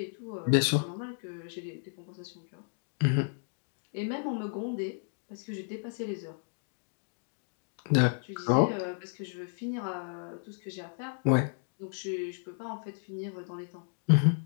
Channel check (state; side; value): silent; right; 56 dB below the other